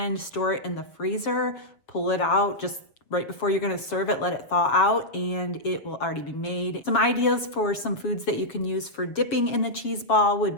store it in the freezer, pull it out just right before you're gonna serve it, let it thaw out, and it will already be made. Some ideas for some foods that you can use for dipping in the cheese ball would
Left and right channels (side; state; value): right; late; 7.2 ms